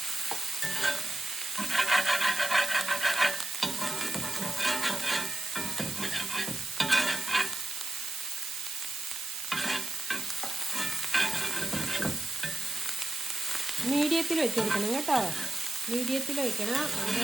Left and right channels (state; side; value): noise; right; hiss, 6 dB below the sound